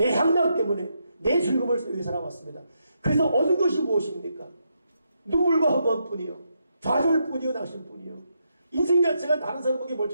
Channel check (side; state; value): both; inverted; correlation -0.80